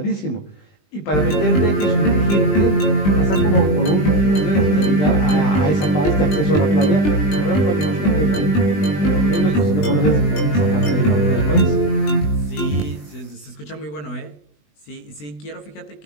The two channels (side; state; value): right; late; 20 ms